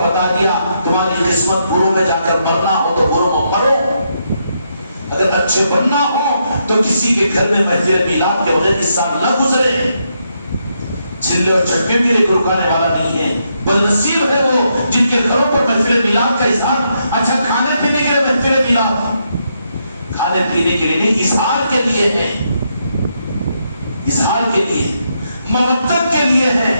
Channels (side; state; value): both; inverted; correlation -0.79